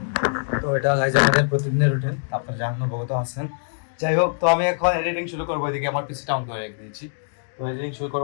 তো এটা গাইজ আমাদের প্রতিদিনের রুটিন, আপনারা জানানো বহুত আছেন। যাই হোক, তো আমি এখন এডিটিং শুরু করবো। এদিকে আমার পিসিটা অন করে রেখে দিয়েছি, তো এডিটিং শুরু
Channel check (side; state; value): right; silent; digital silence